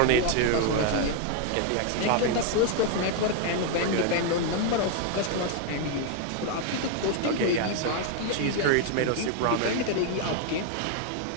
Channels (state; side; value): different; both; correlation 0.00